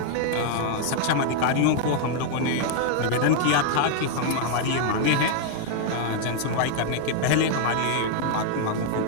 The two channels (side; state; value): both; different; correlation 0.00